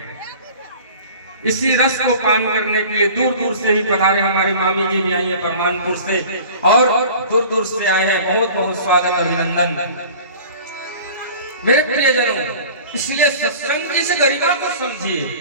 इसी रस को पान करने के लिए दूर दूर से ही पधारे हमारी मामी जी भी आई है परमानपुर से, और दूर दूर से आए हैं। बहुत बहुत स्वागत, अभिनंदन मेरे प्रियजनों। इसलिए सत्संग की इस गरिमा को समझिए।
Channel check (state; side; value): inverted; both; correlation -0.43